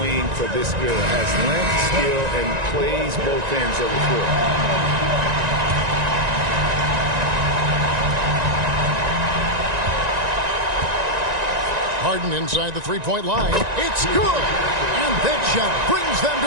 wing for this era. Has length, skill, and plays both ends of the court. Harden inside the 3-point line. It's good. And that shot brings them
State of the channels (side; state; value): left; late; 1.9 ms